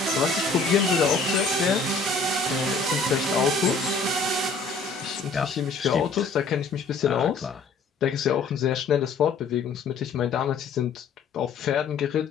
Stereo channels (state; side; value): quieter; right; 4.2 dB